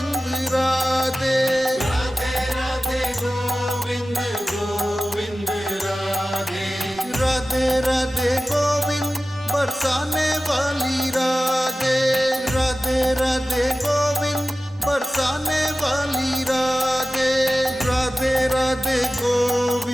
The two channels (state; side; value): normal; both; correlation 0.96